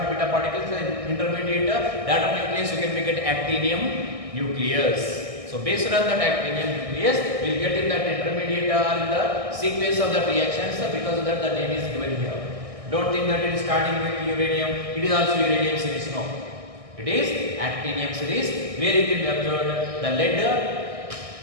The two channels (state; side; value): late; left; 1.6 ms